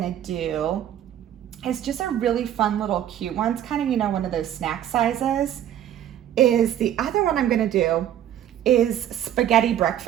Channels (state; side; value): quieter; left; 10.9 dB